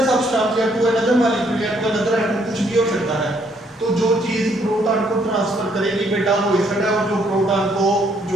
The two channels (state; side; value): normal; both; correlation 0.69